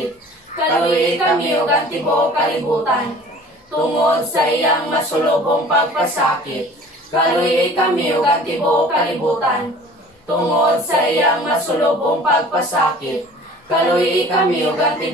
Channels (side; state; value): both; normal; correlation 0.47